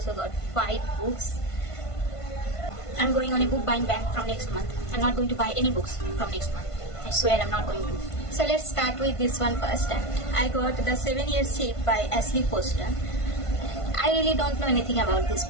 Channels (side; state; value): right; late; 1.5 ms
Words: got 5 books. I'm going on a book buying ban from next month. I'm not going to buy any books from next month. I swear I'm not going to. So let's start with this one first. And I got The 7 Year Shape by Ashley Poston. I really don't know anything about this